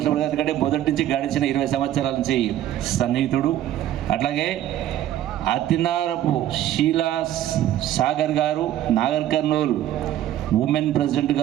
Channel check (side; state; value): left; quieter; 12.4 dB